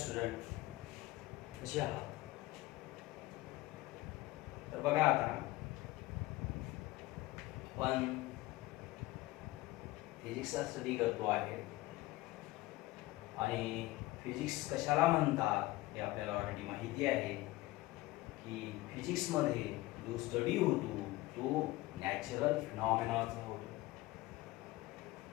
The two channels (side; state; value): right; quieter; 18.8 dB